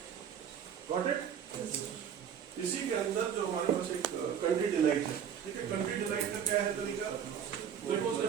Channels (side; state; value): left; quieter; 8.3 dB